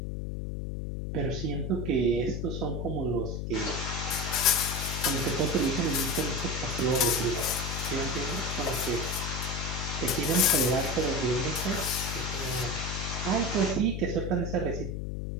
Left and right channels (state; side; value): noise; left; hum, 4 dB below the sound